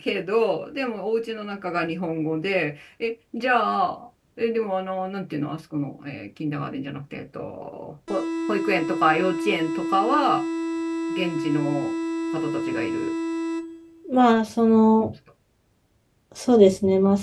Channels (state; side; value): identical; both; correlation 1.00